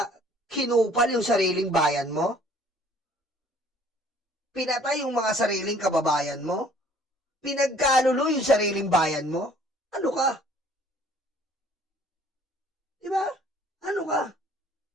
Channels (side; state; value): both; normal; correlation 0.56